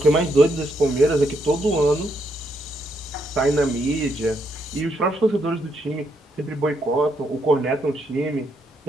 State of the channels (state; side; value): normal; both; correlation 0.77